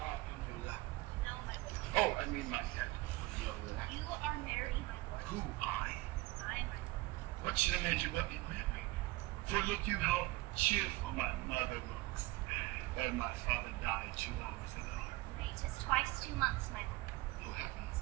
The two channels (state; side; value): quieter; left; 20.6 dB